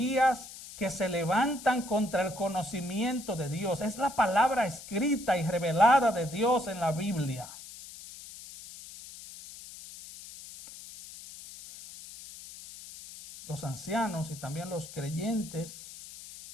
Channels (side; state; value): left; noise; hiss, 15 dB below the sound